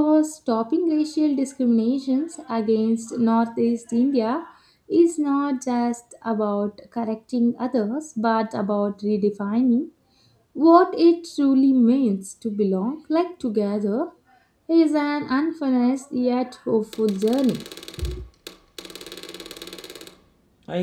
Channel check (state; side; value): identical; both; correlation 1.00